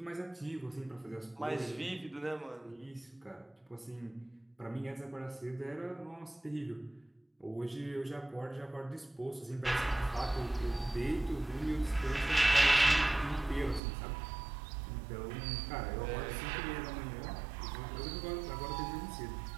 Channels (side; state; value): left; drops out; at 13.8 s